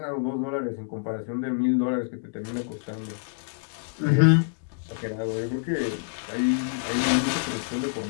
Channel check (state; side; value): quieter; right; 39.5 dB